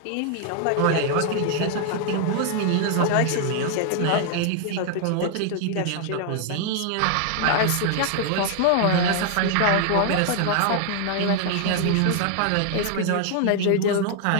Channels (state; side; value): different; both; correlation 0.00